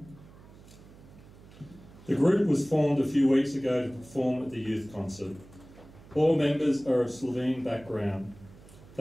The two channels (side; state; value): right; noise; hum, 21 dB below the sound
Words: The group was formed a few weeks ago to perform at the youth concert. All members are of Slovene background.